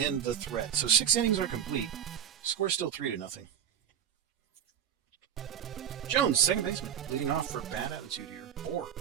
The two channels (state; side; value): quieter; left; 9.3 dB